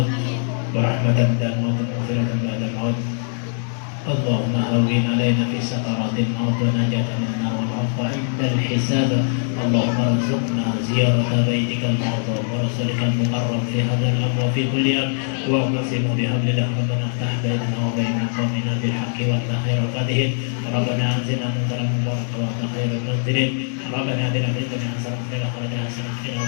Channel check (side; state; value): right; silent; 58 dB below the other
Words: wa rahmatan ba'da al-maut wa maghfiratan ba'da al-maut. اللهم هون علينا في سكرات الموت ونجاة من النار والعفو عند الحساب. اللهم ارزقنا زيارة بيتك المعظم ورسولك المقرب في هذا الأمر وفي كل يوم. واعتصموا بحبل الله ربنا افتح بيننا وبين قومنا بالحق وافتح خير الفاتحين. ربنا انزلنا منزلا مباركا وانت خير المنزلين. ربنا بنا في الدنيا حسنة وفي الآخرة حسنة وقنا